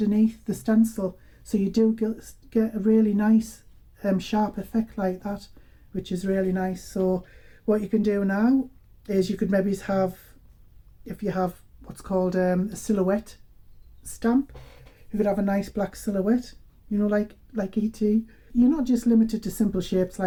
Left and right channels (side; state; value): both; identical; correlation 1.00